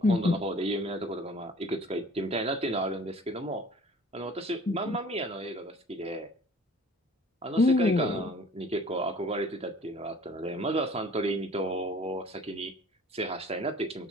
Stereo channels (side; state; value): both; normal; correlation 0.50